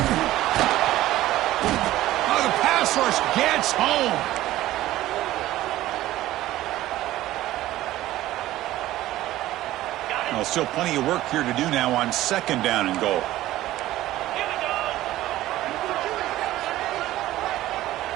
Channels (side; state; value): left; quieter; 15.3 dB